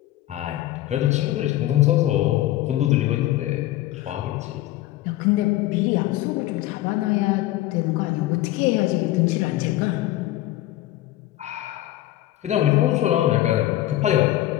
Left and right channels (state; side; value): quieter; right; 15.1 dB